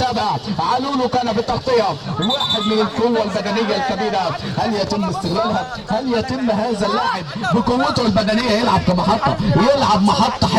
علولو كان بالتغطيه. واحد من القوه البدنيه الكبيره، هل يتم استغلالها؟ هل يتم هذا اللاعب بقوته البدنيه يلعب كمحطه، يلعب محطه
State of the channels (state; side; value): identical; both; correlation 1.00